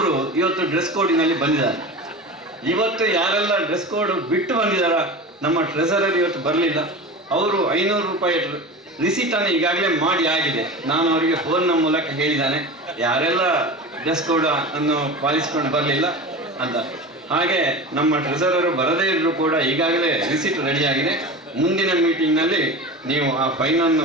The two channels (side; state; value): both; normal; correlation 0.31